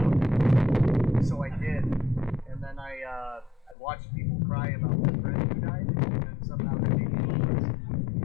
him. So I did, and then I watched people cry about their friend who died, and then somehow that made me depressed.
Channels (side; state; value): right; drops out; at 3.8 s